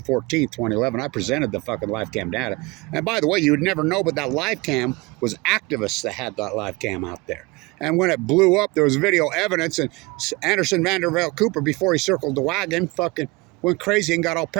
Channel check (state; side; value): quieter; left; 24.0 dB